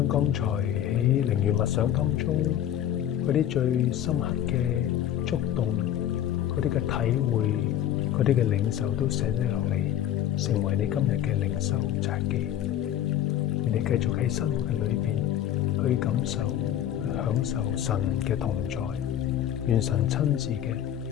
剛才喺靈月默想當中嗰啲最深刻嘅觸動、嗰啲嘅體會、嗰啲嘅領受都寫低落嚟，成為你今日嘅靈修札記。你繼續喺生活嘅裏邊去感受、去享受神嘅同在，願神親自嘅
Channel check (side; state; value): right; quieter; 11.0 dB